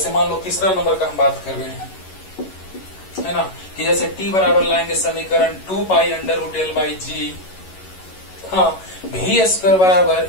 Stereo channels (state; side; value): late; right; 11 ms